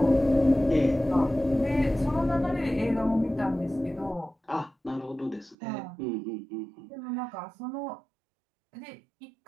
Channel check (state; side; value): drops out; left; at 5.6 s